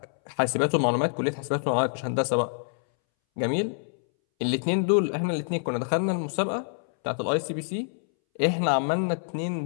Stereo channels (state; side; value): silent; right; 61 dB below the other